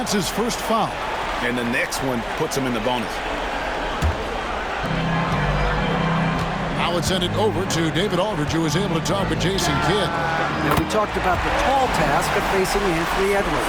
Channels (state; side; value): identical; both; correlation 1.00